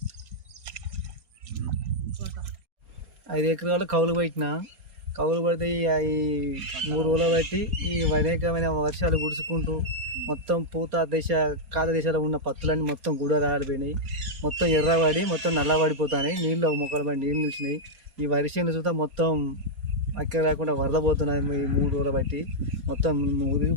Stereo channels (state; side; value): late; left; 4.2 ms